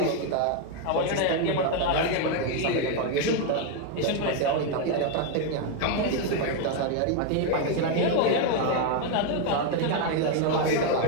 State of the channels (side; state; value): both; different; correlation 0.01